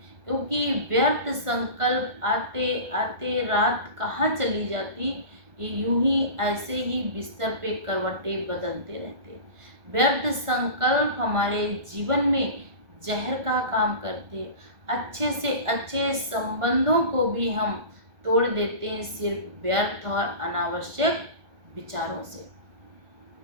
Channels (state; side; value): late; left; 1.4 ms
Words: क्योंकि व्यर्थ संकल्प आते आते रात कहाँ चली जाती, ये यूं ही ऐसे ही बिस्तर पे करवटें बदलते रहते। व्यर्थ संकल्प हमारे जीवन में जहर का काम करते, अच्छे से अच्छे संबंधों को भी हम तोड़ देते हैं सिर्फ व्यर्थ और अनावश्यक विचारों से।